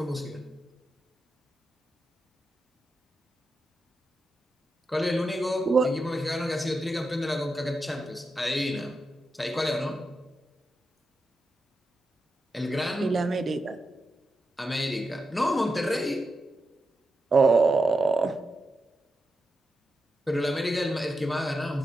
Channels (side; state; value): both; normal; correlation 0.88